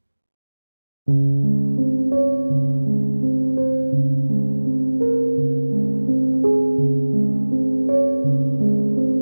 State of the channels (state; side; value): inverted; both; correlation -1.00